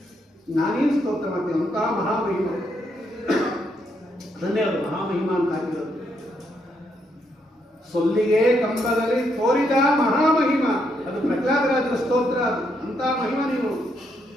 ನಾನೇನು ಸ್ತೋತ್ರ ಮಾಡ್ತೀನಿ? ಅಂತಹ ಮಹಾಮಹಿಮ, ಅದನ್ನೇ ಅವರು ಮಹಾಮಹಿಮ ಅಂತ ಹಾಕಿರೋದು. ಸೊಲ್ಲಿಗೆ ಕಂಬದಲ್ಲಿ ತೋರಿದ ಮಹಾಮಹಿಮ, ಅದು ಪ್ರಹ್ಲಾದರಾಜರ ಸ್ತೋತ್ರ. ಅದು ಅಂತಹ ಮಹಿಮ ನೀನು.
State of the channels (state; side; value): normal; both; correlation 0.77